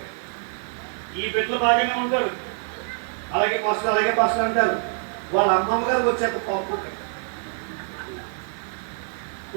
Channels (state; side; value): silent; left; 55 dB below the other